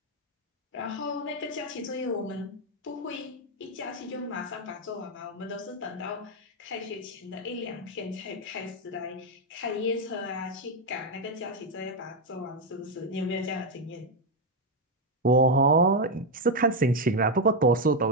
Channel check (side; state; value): both; normal; correlation 0.04